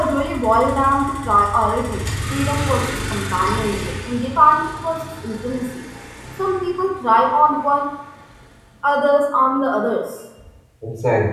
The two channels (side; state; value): both; identical; correlation 1.00